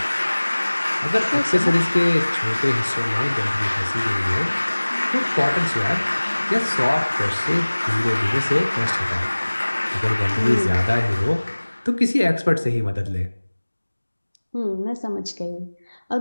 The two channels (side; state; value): both; inverted; correlation -1.00